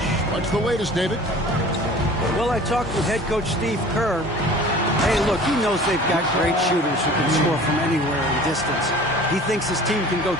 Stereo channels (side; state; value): both; normal; correlation 0.44